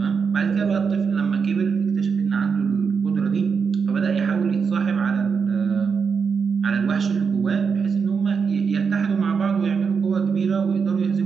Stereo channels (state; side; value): quieter; left; 5.8 dB